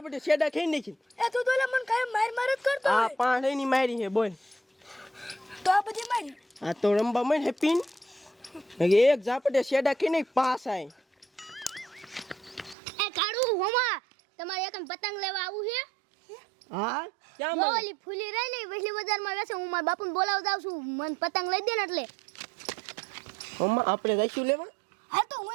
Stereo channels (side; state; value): left; drops out; at 12.8 s